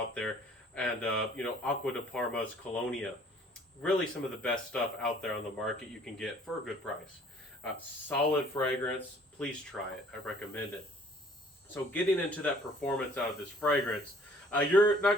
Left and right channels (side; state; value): both; normal; correlation 0.56